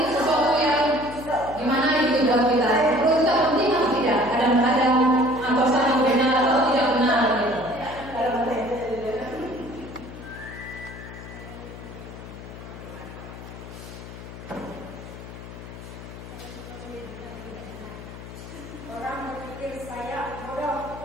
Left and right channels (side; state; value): left; noise; hum, 13 dB below the sound